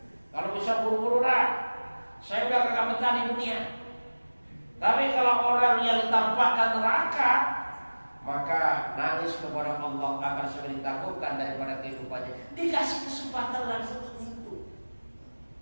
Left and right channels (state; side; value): inverted; both; correlation -1.00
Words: Kalau bisa buru-buru lah, saya udah kagak betah di dunia. Tapi kalau orang yang ditampakkan neraka, maka nangis kepada Allah akan segera ditangguhkan daripada kehidupannya. Dikasih kesempatan langsung untuk itu.